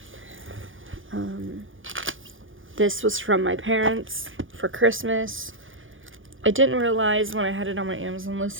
This was from my parents for Christmas. I didn't realize when I had it on my Amazon list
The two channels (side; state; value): left; late; 0.58 ms